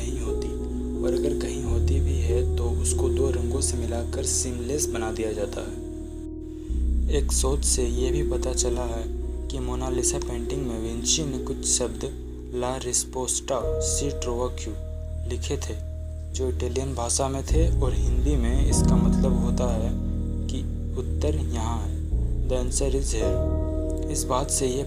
होती, और अगर कहीं होती भी है तो उसको 2 रंगों से मिलाकर सीमलेस बना दिया जाता है। एक शोध से ये भी पता चला है कि मोनालिसा पेंटिंग में विंची ने कुछ शब्द ला रिस्पोस्टा सी ट्रोवा क्यू लिखे थे, जो इटालियन भाषा में थे, और हिंदी में इसका मतलब होता है कि उत्तर यहाँ है। The answer is here. इस बात से ये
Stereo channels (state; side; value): identical; both; correlation 1.00